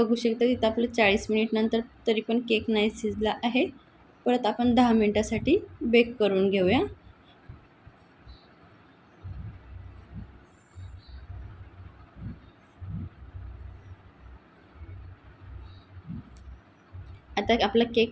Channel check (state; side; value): identical; both; correlation 1.00